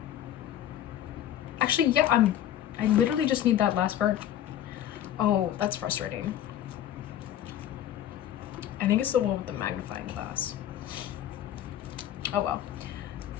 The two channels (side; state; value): right; quieter; 11.4 dB